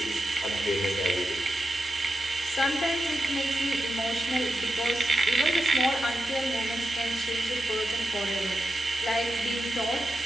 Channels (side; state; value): both; normal; correlation 0.89